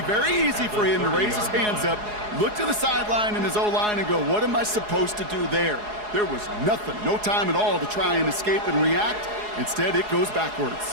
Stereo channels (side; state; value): left; late; 4.8 ms